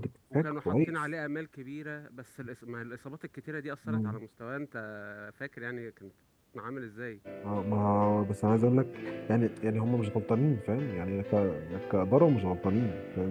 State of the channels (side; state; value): both; identical; correlation 1.00